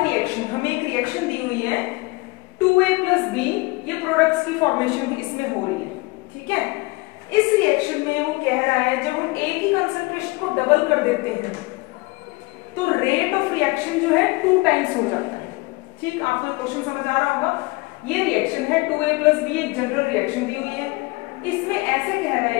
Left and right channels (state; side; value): quieter; right; 24.6 dB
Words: रिएक्शन, हमें एक रिएक्शन दी हुई है 2a + b, ये प्रोडक्ट्स की फॉर्मेशन भी इसमें हो रही है। ठीक है, इस रिएक्शन में वो कह रहा है जब हम a की कंसंट्रेशन को डबल कर देते हैं तो रेट ऑफ रिएक्शन जो है 2 टाइम्स हो जाता है। ठीक, आपको क्वेश्चन समझ आ रहा होगा। ये रिएक्शन है 2a + b, एक जनरल रिएक्शन दी हुई है। इसमें ऐसे कह रहा है